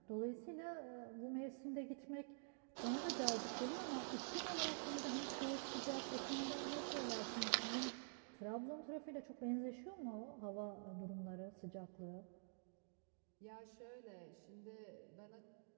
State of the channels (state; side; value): silent; left; digital silence